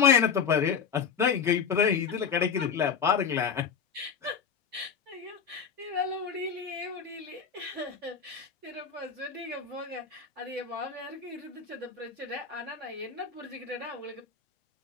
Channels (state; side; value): quieter; right; 6.5 dB